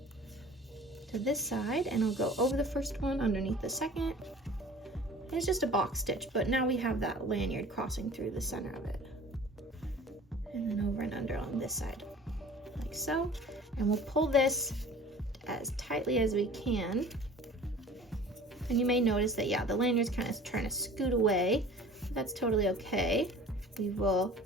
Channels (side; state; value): both; normal; correlation 0.44